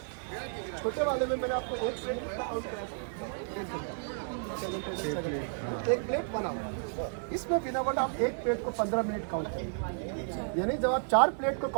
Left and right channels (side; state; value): left; silent; digital silence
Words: छोटे वाले में मैंने आपको एक प्लेट बना हुआ, इसमें बिना वर्ड आप एक प्लेट को 15 मिनट काउंट करेंगे, यानी जब आप 4 प्लेट को